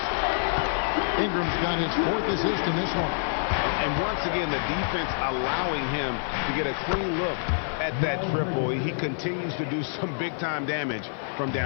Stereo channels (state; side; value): silent; right; 60 dB below the other